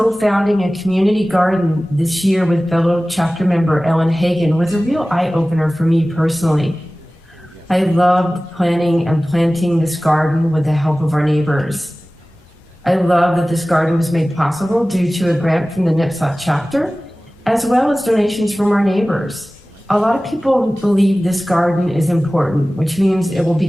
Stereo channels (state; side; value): normal; both; correlation 0.97